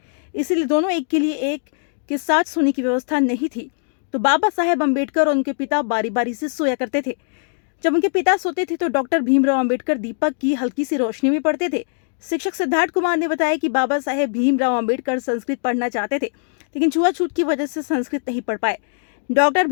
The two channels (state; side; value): silent; right; digital silence